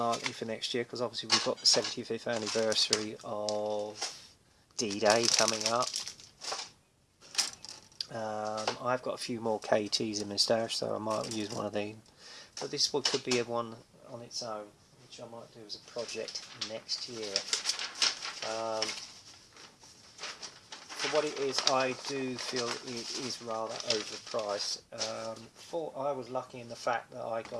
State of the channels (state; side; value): identical; both; correlation 1.00